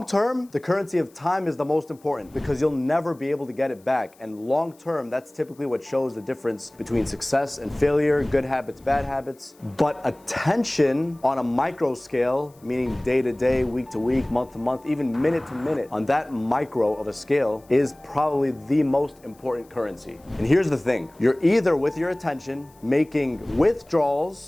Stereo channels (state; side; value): noise; left; hiss, 30 dB below the sound